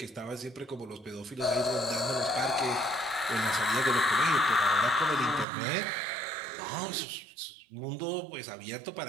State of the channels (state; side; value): drops out; left; at 5.5 s